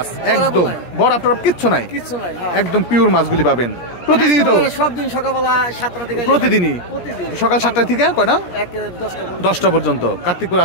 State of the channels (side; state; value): right; late; 17 ms